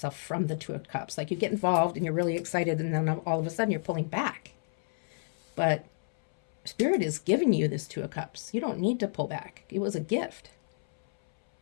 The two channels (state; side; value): silent; right; 58 dB below the other